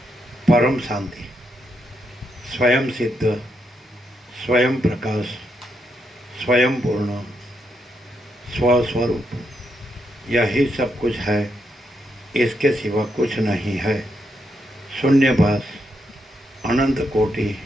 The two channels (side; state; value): both; normal; correlation 0.80